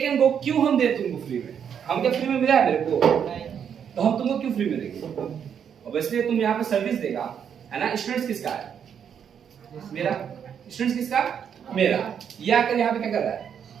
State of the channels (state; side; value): quieter; left; 8.0 dB